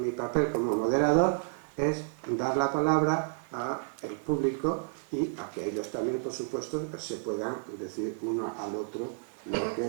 papel como moderador es dar la palabra al público y a que ellos también, por supuesto, se puedan decir uno al otro lo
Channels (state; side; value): silent; left; 57 dB below the other